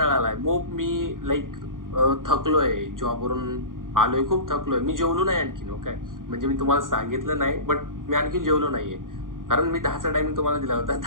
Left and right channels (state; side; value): late; left; 0.90 ms